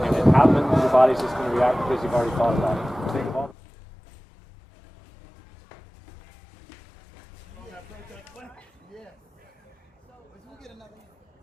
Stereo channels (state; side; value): normal; both; correlation 0.98